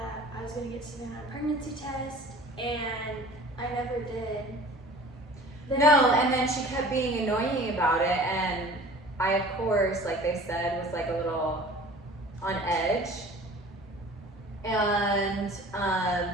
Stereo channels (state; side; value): normal; both; correlation 0.45